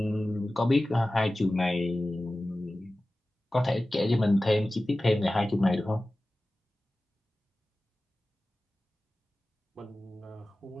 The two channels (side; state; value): both; normal; correlation 0.96